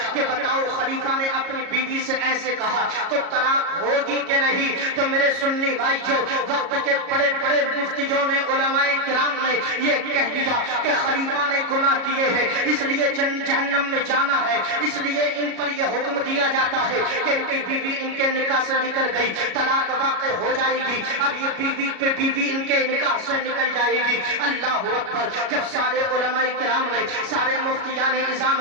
کہ بتاؤ خلیفہ نے اپنی بیوی سے ایسے کہا تو طلاق ہوگی کہ نہیں؟ تو میرے سنی بھائی جو وقت کے بڑے بڑے مفتیوں نے علماء کرام نے یہ کہہ دیا کہ خلیفہ نے گناہ کیے ہیں اس لیے جہنم میں جانا ہے، اس لیے ان پر یہ حکم دیا جاتا ہے کہ ان کی بیوی ان کے نکاح سے نکل گئی، طلاق واقع ہو جائے گی، اب یہ بیوی پہ بیوی ان کے نکاح سے نکل جائے گی۔ اللہ اکبر! جب سارے علماء کرام نے، سارے مفتیان اعظام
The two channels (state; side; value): late; left; 37 ms